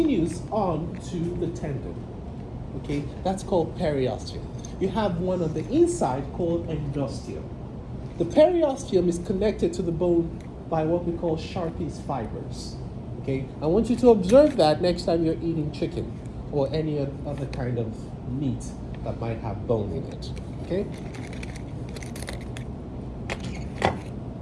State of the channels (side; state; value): both; identical; correlation 1.00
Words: on to the tendon. Okay, that's called periosteum. You have one on the inside called endosteum. The periosteum is connected to the bone by what we call Sharpie's fibers. Okay, I want you to observe that next time you're eating chicken or any other kind of meat that might have bone in it. Okay.